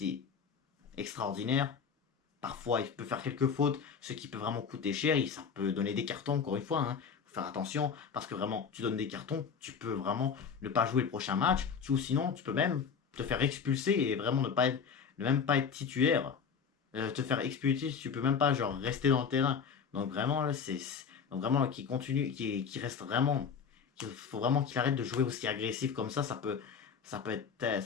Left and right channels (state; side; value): quieter; right; 6.4 dB